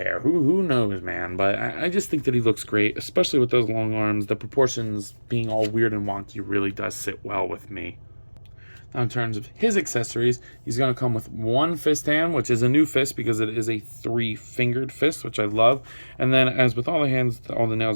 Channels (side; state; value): both; inverted; correlation -1.00